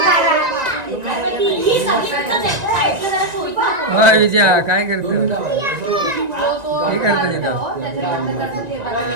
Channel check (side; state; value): left; late; 1.9 ms